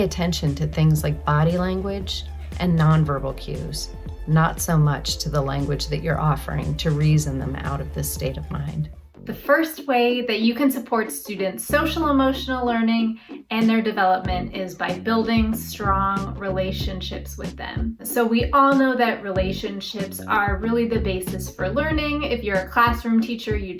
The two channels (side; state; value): both; identical; correlation 1.00